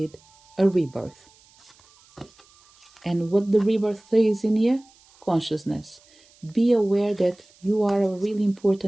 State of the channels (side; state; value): right; noise; hiss, 29 dB below the sound